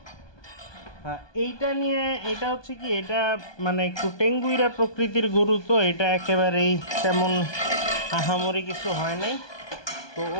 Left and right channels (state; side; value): late; right; 1.2 ms